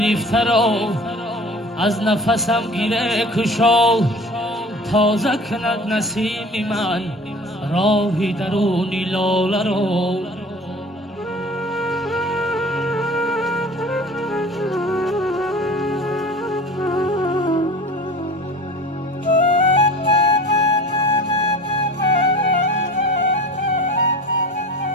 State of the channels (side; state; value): both; normal; correlation 0.41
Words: را از نفسم گیره کشا تازه کند نسیم من راه درونی لاله را.